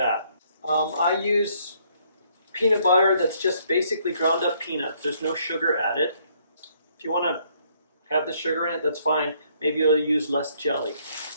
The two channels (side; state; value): both; inverted; correlation -0.67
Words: I use peanut butter that's just basically ground up peanuts. There's no sugar added. If you want to have the sugar in it, that's fine. Maybe you'll use less jelly.